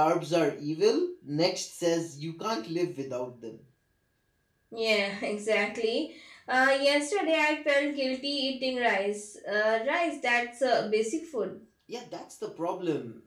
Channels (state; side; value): identical; both; correlation 1.00